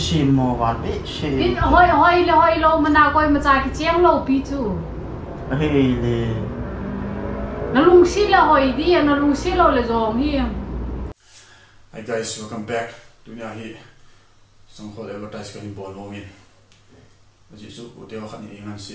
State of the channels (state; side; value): identical; both; correlation 1.00